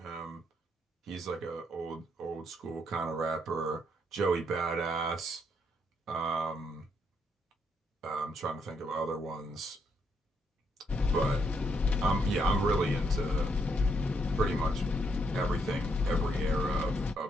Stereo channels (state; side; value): normal; both; correlation 0.75